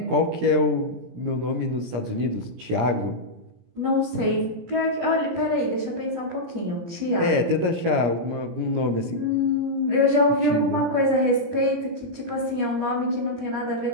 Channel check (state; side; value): late; left; 17 ms